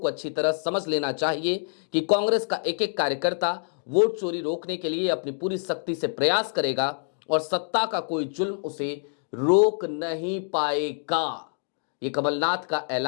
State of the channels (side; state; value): right; silent; digital silence